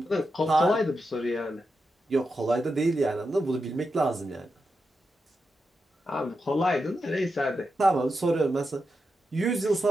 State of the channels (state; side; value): normal; both; correlation 0.88